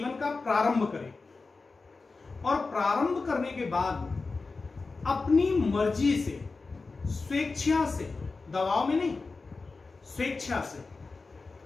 का प्रारंभ करे और प्रारंभ करने के बाद अपनी मर्जी से, स्वेच्छा से, दबाव में नहीं, स्वेच्छा से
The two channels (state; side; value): quieter; right; 4.0 dB